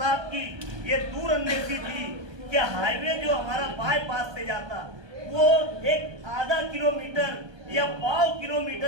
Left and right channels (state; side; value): late; left; 1.2 ms